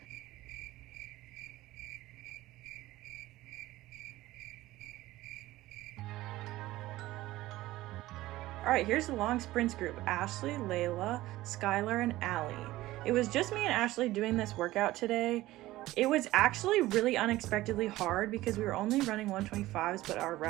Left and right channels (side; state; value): left; quieter; 16.9 dB